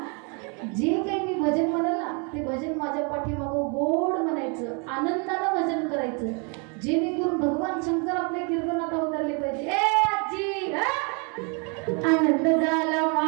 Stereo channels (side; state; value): left; quieter; 35.1 dB